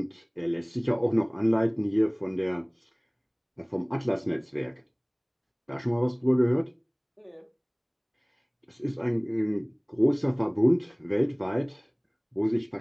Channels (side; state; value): both; identical; correlation 1.00